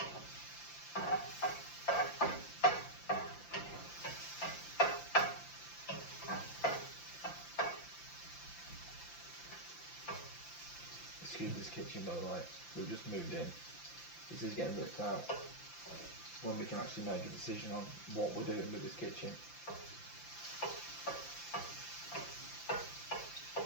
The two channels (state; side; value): late; right; 5.8 ms